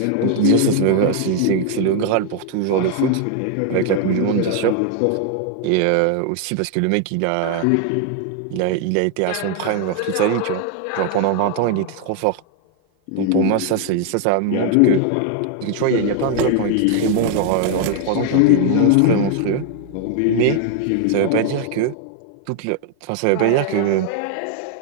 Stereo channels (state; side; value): different; both; correlation 0.00